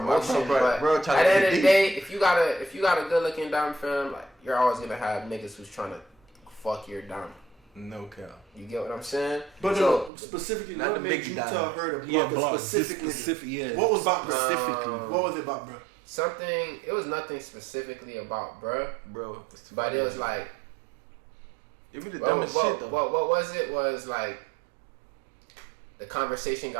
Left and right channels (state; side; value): drops out; left; at 10.1 s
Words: but at the end of the day, if you got a good looking dom fam, like you're always gonna have niggas who's trying to fuck your dom. No cap. You get what I'm saying? But so, specifically, not what the made big you dom. tell her to block specifically? Yeah. What was about specifically? What was it about, bro? It was nothing specifically about bro, but it was like. It be the dumbest shit though. What was it? Was like. The conversation